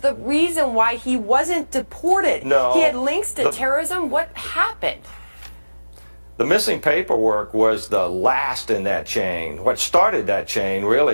reason why he wasn't deported. No, he had links to terrorism. What happened? The missing paperwork was the last in that chain. What started that chain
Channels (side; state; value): both; inverted; correlation -1.00